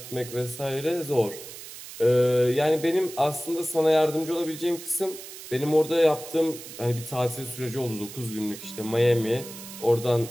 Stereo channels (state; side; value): noise; right; hiss, 13 dB below the sound